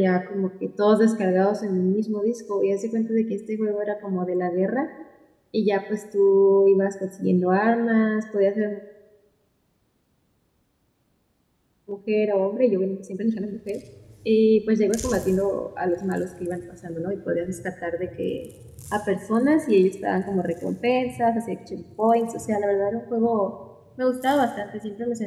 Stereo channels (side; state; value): both; identical; correlation 1.00